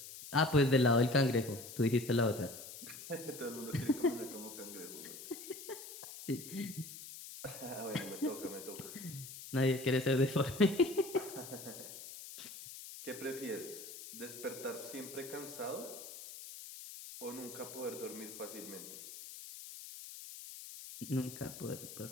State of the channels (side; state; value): left; noise; hiss, 12 dB below the sound